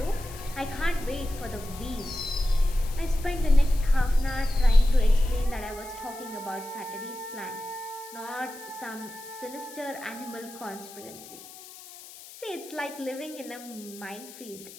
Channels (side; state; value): left; noise; hiss, 17 dB below the sound